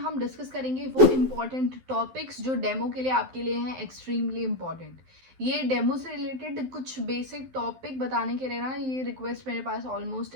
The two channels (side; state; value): left; late; 12 ms